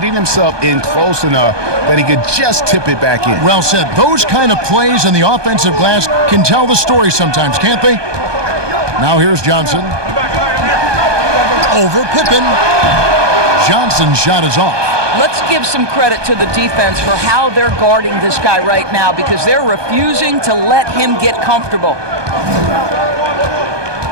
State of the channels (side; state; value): left; late; 1.2 ms